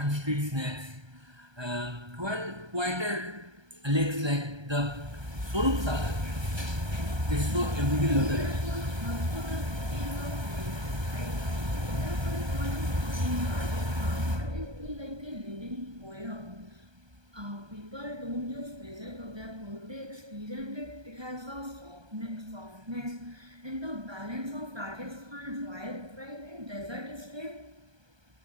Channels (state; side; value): late; left; 1.3 ms